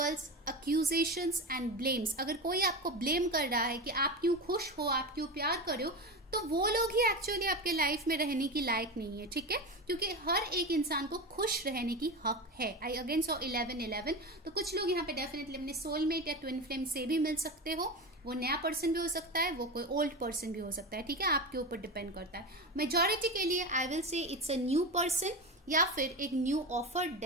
accusations and blames. अगर कोई आपको ब्लेम कर रहा है कि आप क्यों खुश हो, आप क्यों प्यार कर रहे हो, तो वो लोग ही एक्चुअली आपके लाइफ में रहने की लायक नहीं है। ठीक है, क्योंकि हर एक इंसान को खुश रहने की हक है। I again so 11-11। तो कुछ लोग यहाँ पे डेफिनेटली अपने सोलमेट या ट्विन फ्लेम से भी मिल सकते हो। वो नया पर्सन भी हो सकता है, वो कोई ओल्ड पर्सन भी हो सकता है। ठीक है, आपके ऊपर डिपेंड करता है। मेजॉरिटी के लिए I will say it's a new person या फिर एक न्यू ऑफर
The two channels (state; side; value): normal; both; correlation 0.22